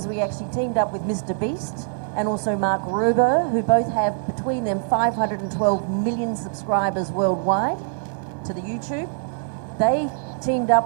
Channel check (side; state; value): left; silent; 63 dB below the other